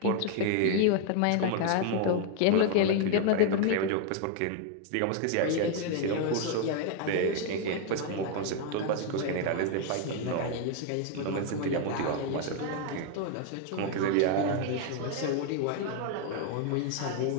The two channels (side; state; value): both; different; correlation 0.01